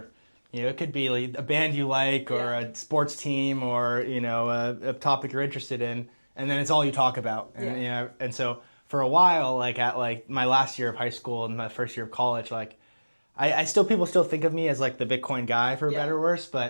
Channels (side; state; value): both; inverted; correlation -1.00